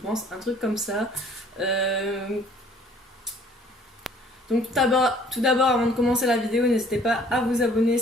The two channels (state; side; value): normal; both; correlation 0.56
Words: un truc comme ça. Donc tout d'abord avant de commencer la vidéo, n'hésitez pas à vous abonner